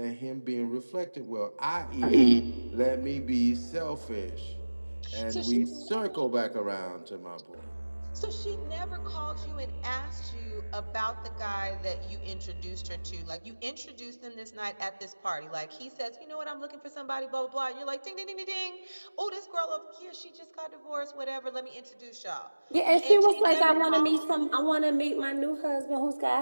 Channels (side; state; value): both; inverted; correlation -1.00